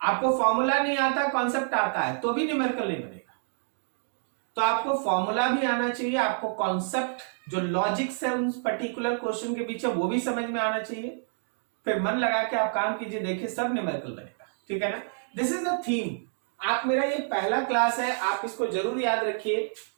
आपको फॉर्मूला नहीं आता, कॉन्सेप्ट आता है, तो भी न्यूमेरिकल नहीं बनेगा। तो आपको फॉर्मूला भी आना चाहिए, आपको कॉन्सेप्ट जो लॉजिक्स है उन पर्टिकुलर क्वेश्चन के पीछे वो भी समझ में आना चाहिए। फिर मन लगा के आप काम कीजिए, देखिए सब न्यूमेरिकल बनेगा। ठीक है ना? This is the theme. आप मेरा ये पहला क्लास है, आप इसको जरूर याद रखिए।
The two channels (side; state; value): left; silent; digital silence